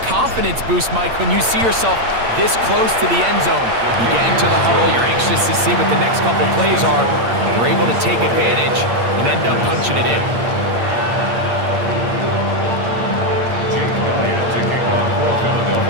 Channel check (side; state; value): left; late; 8.7 ms